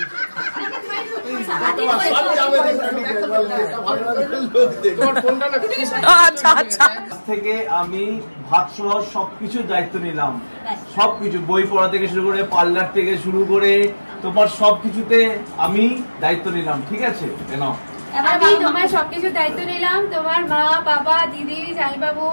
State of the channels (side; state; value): both; inverted; correlation -1.00